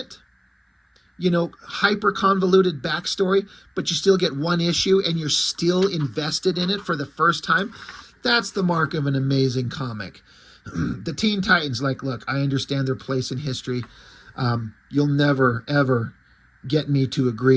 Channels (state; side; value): identical; both; correlation 1.00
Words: You know, hyper convoluted backstory, but you still get one issue and you're still invested in it for the first time. That's the mark of an amazing comic. The Teen Titans, like, look, I understand their place in history. You'll never, ever get me to